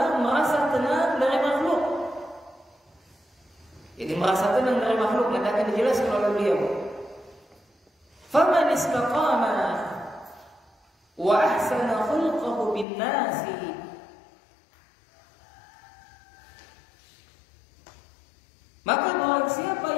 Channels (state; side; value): drops out; right; at 12.9 s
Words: merasa tenang dari makhluk. Jadi merasa tenang dari makhluk nanti akan dijelaskan oleh beliau. Faman istaqama wa ahsana khulqahu bin nasi, maka barang siapa